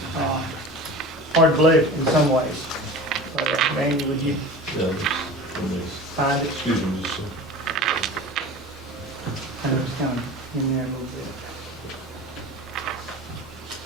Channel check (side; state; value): both; normal; correlation 0.36